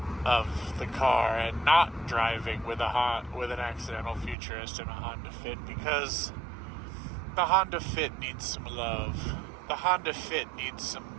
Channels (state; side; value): drops out; left; at 4.4 s